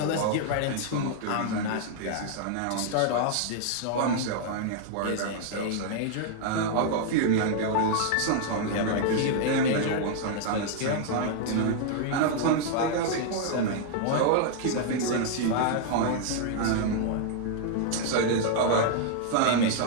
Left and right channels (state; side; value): different; both; correlation -0.01